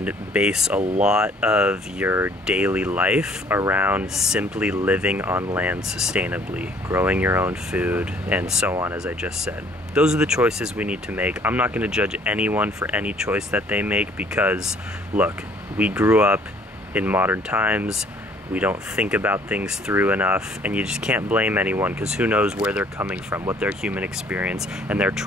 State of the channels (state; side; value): normal; both; correlation 0.59